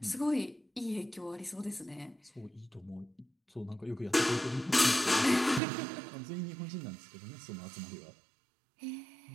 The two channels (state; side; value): drops out; left; at 5.6 s